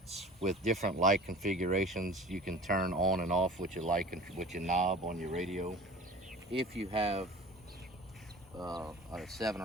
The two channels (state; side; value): normal; both; correlation 0.40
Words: with different light configurations you can turn on and off with your with your knob on your radio. If you have a 7